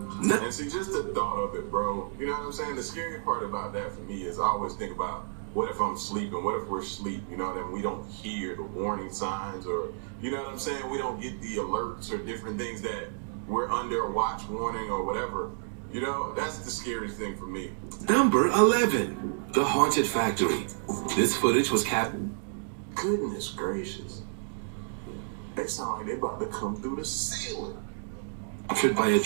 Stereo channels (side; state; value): left; silent; digital silence